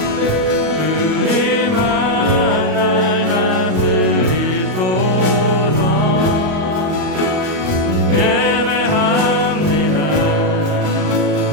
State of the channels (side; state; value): left; late; 38 ms